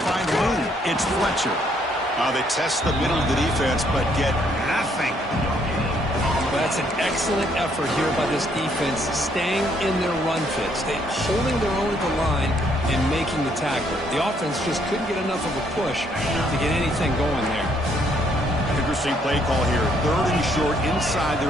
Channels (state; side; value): normal; both; correlation 0.69